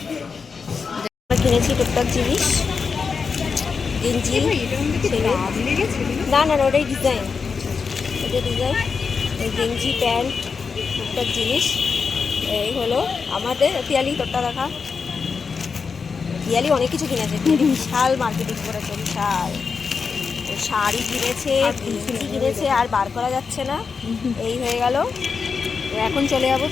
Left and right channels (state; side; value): quieter; right; 5.4 dB